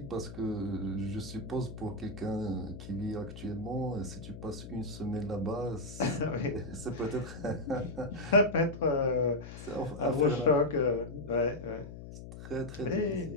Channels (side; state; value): left; noise; hum, 12 dB below the sound